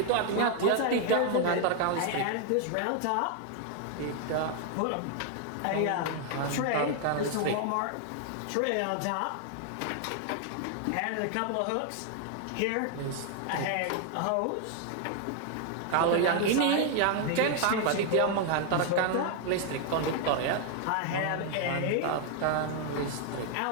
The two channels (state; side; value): different; both; correlation 0.00